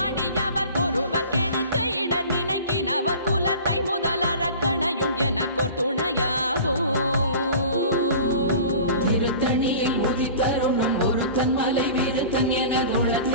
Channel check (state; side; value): inverted; both; correlation -0.40